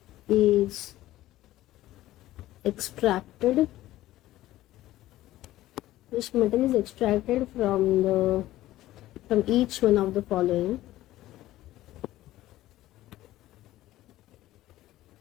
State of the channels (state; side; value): quieter; right; 15.3 dB